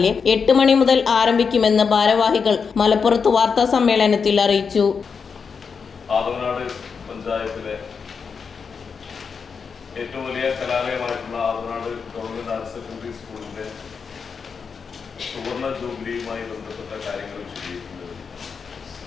8 മണി മുതൽ ആരംഭിക്കുമെന്ന് ഭാരവാഹികൾ മലപ്പുറത്ത് വാർത്താ സമ്മേളനത്തിൽ അറിയിച്ചു. ആദവനാട് പഞ്ചായത്തിലെ ഏറ്റവും വലിയ കലാലയമായിട്ടുള്ള ആദവനാട് ഗവൺമെന്റ് ഹയർ സെക്കൻഡറി സ്കൂളിന്റെ സുവർണ ജൂബിലിയുമായി ബന്ധപ്പെട്ട കാര്യങ്ങൾ വിശദീകരിക്കുന്നത്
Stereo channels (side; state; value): right; quieter; 5.8 dB